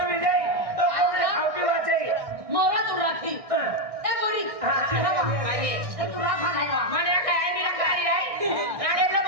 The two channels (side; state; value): left; late; 1.6 ms